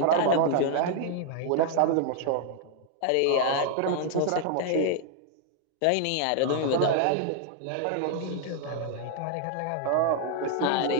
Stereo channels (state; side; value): different; both; correlation 0.00